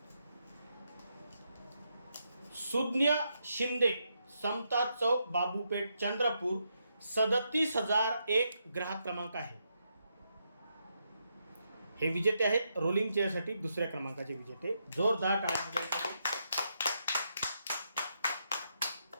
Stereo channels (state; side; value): inverted; both; correlation -0.81